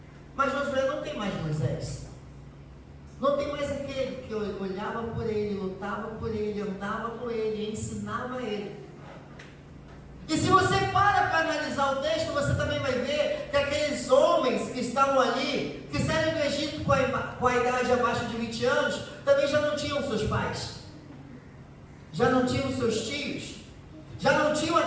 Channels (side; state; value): both; identical; correlation 1.00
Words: Mas Josué não tem mais Moisés, não tem mais aquele que olhava por ele, lutava por ele, andava com ele, ensinava ele. E se você para analisar o texto, você também vai ver que aqueles homens que estavam ali, que saíram do Egito com a idade abaixo de 20 anos, também já não tinham seus pais, já não tinham seus tios, já não tinham